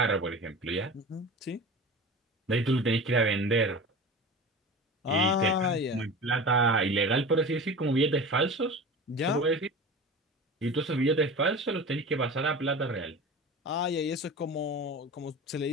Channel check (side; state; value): both; normal; correlation 0.33